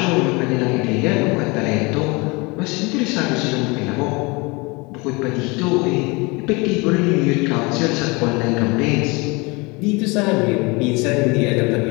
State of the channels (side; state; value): right; quieter; 26.7 dB